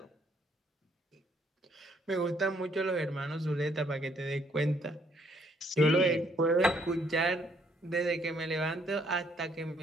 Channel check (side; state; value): both; normal; correlation 0.67